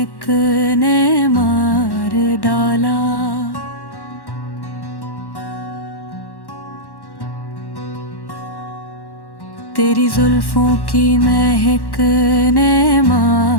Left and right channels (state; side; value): late; right; 1.1 ms